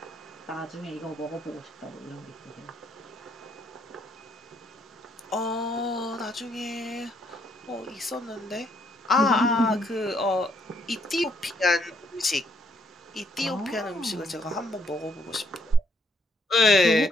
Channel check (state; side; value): normal; both; correlation 0.71